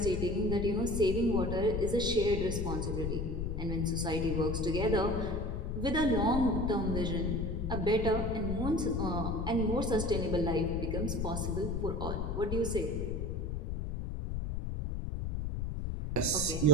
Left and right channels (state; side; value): noise; left; rumble, 2 dB below the sound